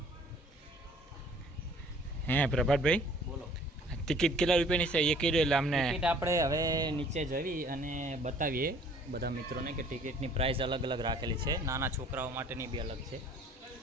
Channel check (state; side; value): normal; both; correlation 0.55